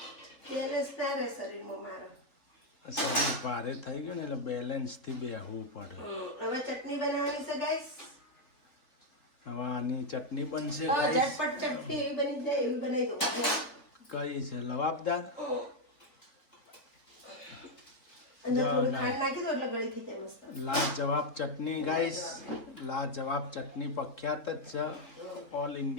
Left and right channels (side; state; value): right; late; 3.9 ms